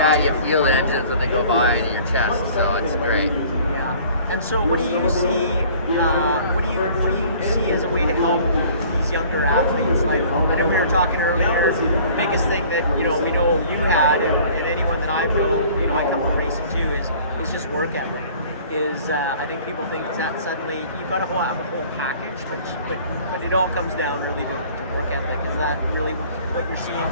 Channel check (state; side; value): inverted; both; correlation -0.51